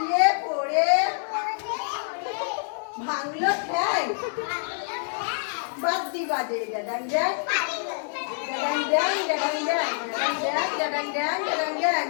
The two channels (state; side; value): silent; right; digital silence